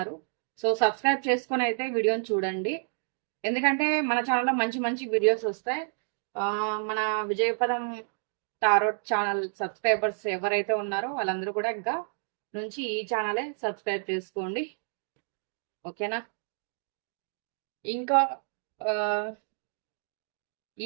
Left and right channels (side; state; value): left; silent; 58 dB below the other